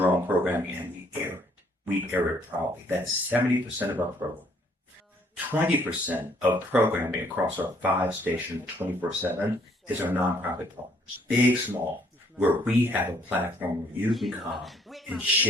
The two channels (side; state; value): both; normal; correlation 0.65